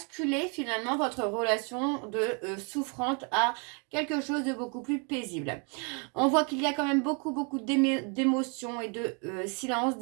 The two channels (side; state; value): left; quieter; 36.2 dB